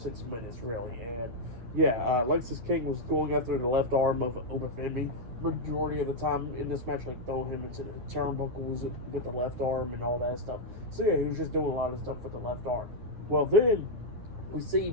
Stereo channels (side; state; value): left; late; 9.4 ms